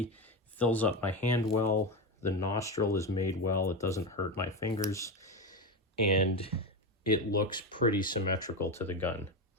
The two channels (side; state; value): both; normal; correlation 0.16